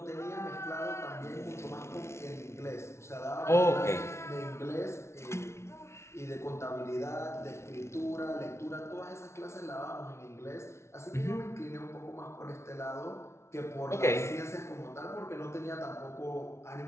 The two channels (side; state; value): right; late; 0.13 ms